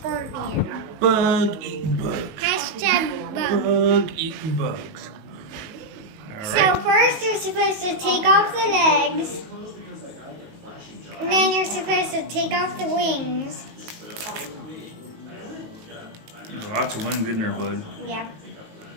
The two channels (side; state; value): left; late; 19 ms